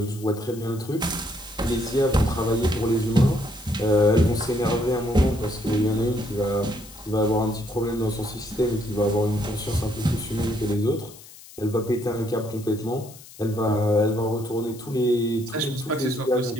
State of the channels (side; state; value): left; noise; hiss, 19 dB below the sound